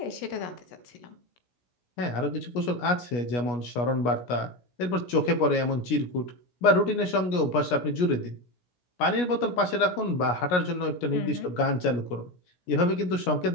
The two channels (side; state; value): right; late; 17 ms